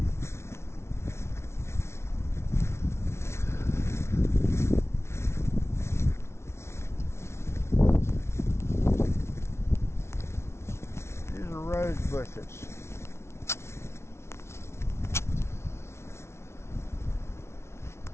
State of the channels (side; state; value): right; late; 0.13 ms